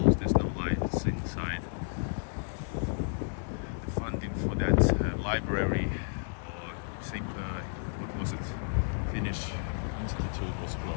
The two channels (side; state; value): right; silent; digital silence